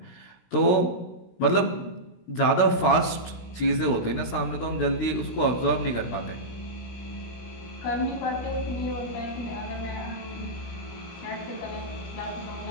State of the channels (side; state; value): right; late; 17 ms